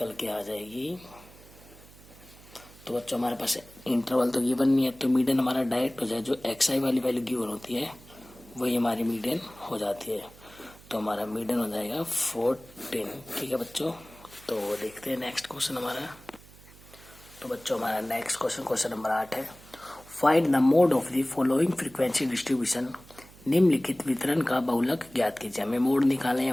के आ जाएगी। तो बच्चों हमारे पास इंटरवल तो गिवन नहीं है, तो मीडियन हमारा डायरेक्ट हो जाए, जो एक्स आई वाली वैल्यू गिवन होती है वही हमारी मीडियन हो जाती है। तो हमारा मीडियन हो जाएगा 14। ठीक है बच्चों, तो देखते हैं नेक्स्ट क्वेश्चन हमारा। तो बच्चों हमारा नेक्स्ट क्वेश्चन, क्वेश्चन नंबर 8 है, find the mode of the following frequency distribution. निम्नलिखित वितरण का बहुलक ज्ञात कीजिए। हमें मोड निकालना है या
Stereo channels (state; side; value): noise; right; hum, 22 dB below the sound